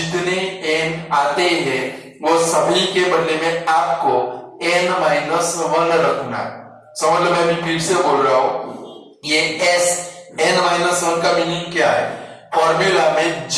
n आते हैं वो सभी के बदले में आपको n माइनस 1 रखना है। समझ लो, मैं भी फिर से बोल रहा हूं, ये Sn माइनस 1 का मीनिंग क्या है, फॉर्मूला में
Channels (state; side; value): identical; both; correlation 1.00